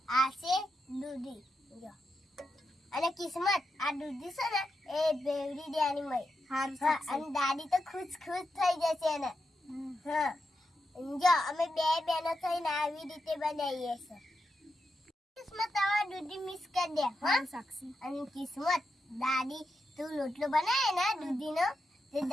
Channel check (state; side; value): normal; both; correlation 0.87